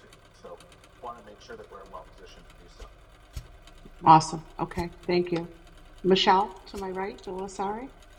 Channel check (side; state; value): both; identical; correlation 1.00